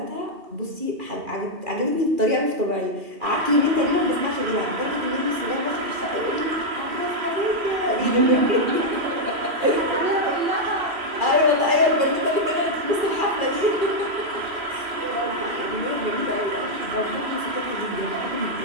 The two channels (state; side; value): late; left; 2.4 ms